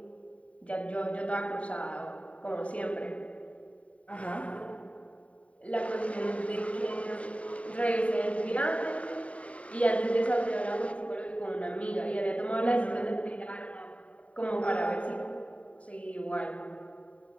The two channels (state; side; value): late; right; 0.066 ms